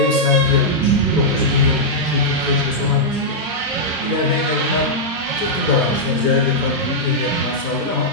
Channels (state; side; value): normal; both; correlation -0.08